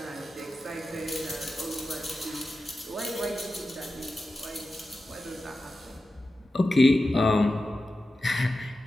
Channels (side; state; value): both; normal; correlation 0.93